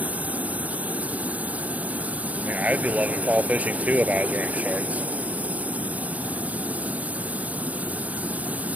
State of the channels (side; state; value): left; late; 0.073 ms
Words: I mean, I'd be loving fall fishing too if I was wearing shorts.